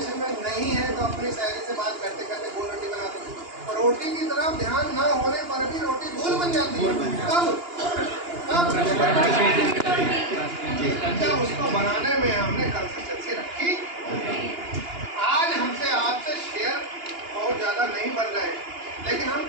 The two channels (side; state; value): left; late; 2.9 ms